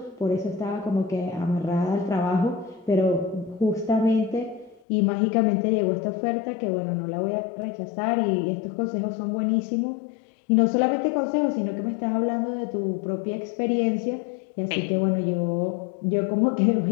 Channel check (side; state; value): right; drops out; at 4.8 s